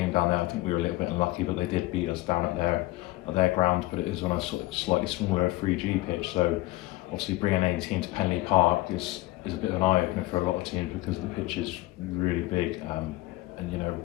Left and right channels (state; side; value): quieter; right; 18.6 dB